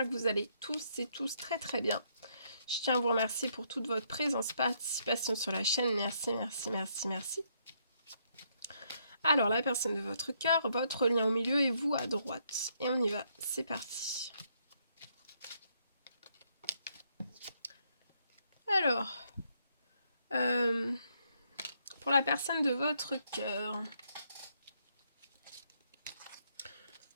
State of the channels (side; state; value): both; inverted; correlation -0.73